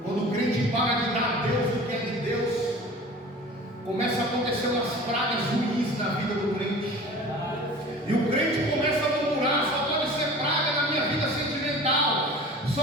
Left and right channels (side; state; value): both; normal; correlation 0.41